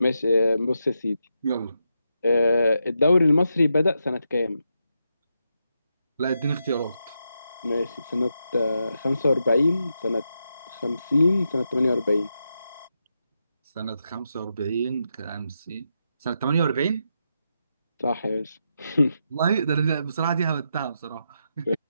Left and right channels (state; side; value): inverted; both; correlation -0.84